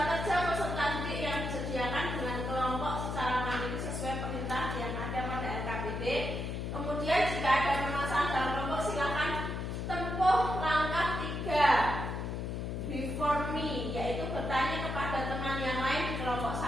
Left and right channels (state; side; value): noise; left; hum, 3 dB below the sound